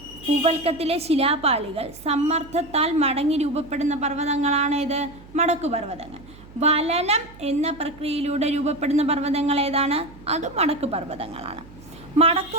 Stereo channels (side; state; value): right; noise; hum, 21 dB below the sound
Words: ഭൂവൽക്കത്തിലെ ശിലാപാളികൾ സമ്മർദ്ദത്താൽ മടങ്ങി രൂപപ്പെടുന്ന പർവ്വതങ്ങളാണ് ഇത് മടക്കുപർവ്വതങ്ങൾ. വലനം എന്ന പ്രക്രിയയിലൂടെ രൂപപ്പെടുന്ന പർവ്വതങ്ങൾ ഏതാണ്? അത് മടക്കുപർവ്വതങ്ങളാണ്.